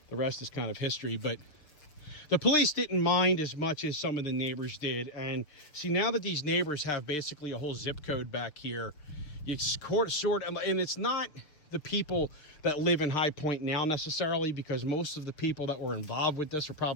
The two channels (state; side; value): late; right; 6.7 ms